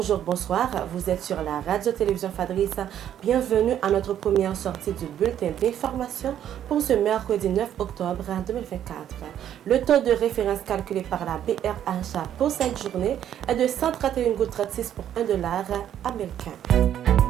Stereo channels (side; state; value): left; quieter; 10.4 dB